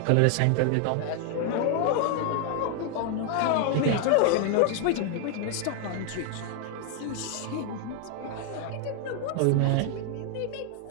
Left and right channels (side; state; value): both; different; correlation 0.00